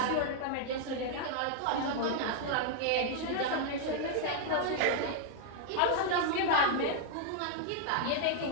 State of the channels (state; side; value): different; both; correlation -0.01